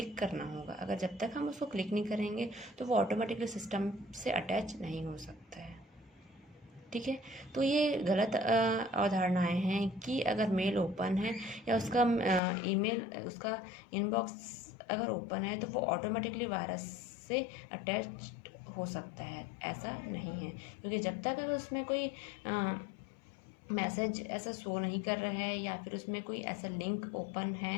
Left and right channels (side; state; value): right; drops out; at 12.4 s